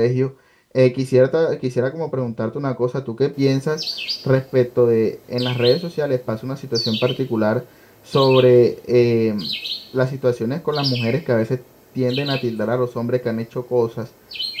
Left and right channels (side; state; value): both; identical; correlation 1.00